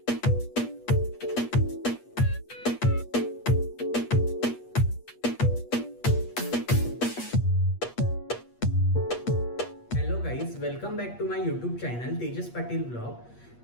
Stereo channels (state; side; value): late; right; 8.4 ms